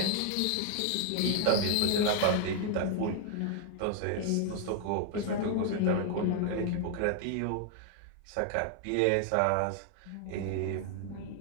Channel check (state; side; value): different; both; correlation 0.00